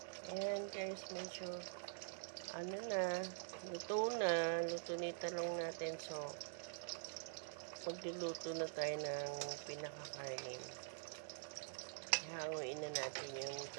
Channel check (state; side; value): silent; left; digital silence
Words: Ayan guys, medyo luto na yung talong natin. So, magluluto na tayo ng pinakakainin. Hanguin na natin yung